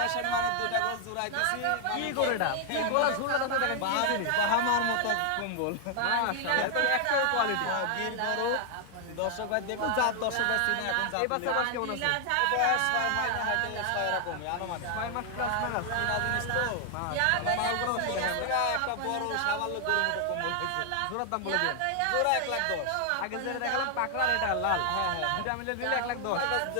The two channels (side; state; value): both; different; correlation 0.00